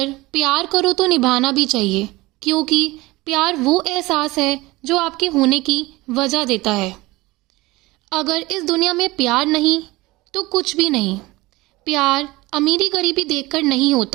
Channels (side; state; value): left; quieter; 20.7 dB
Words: प्यार करो तो निभाना भी चाहिए, क्योंकि प्यार वो एहसास है जो आपके होने की वजह देता है। अगर इस दुनिया में प्यार नहीं तो कुछ भी नहीं। प्यार अमीरी गरीबी देखकर नहीं